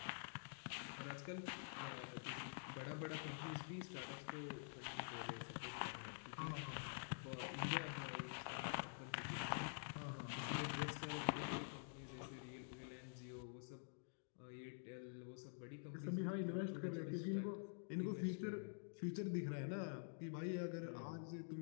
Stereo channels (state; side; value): silent; right; digital silence